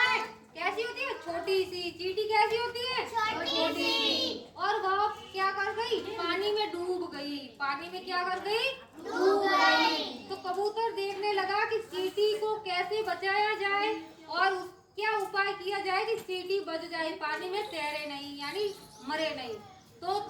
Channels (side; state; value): both; identical; correlation 1.00